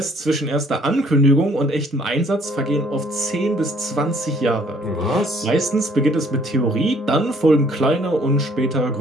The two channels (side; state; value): both; normal; correlation 0.60